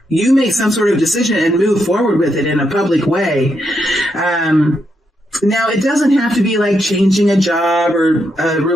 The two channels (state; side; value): normal; both; correlation 0.81